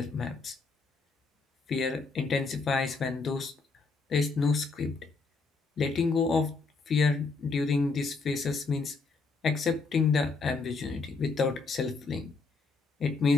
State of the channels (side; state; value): right; quieter; 4.2 dB